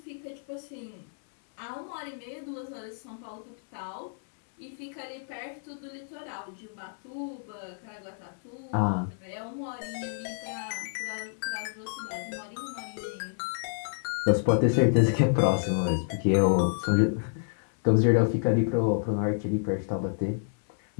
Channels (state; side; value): silent; right; 58 dB below the other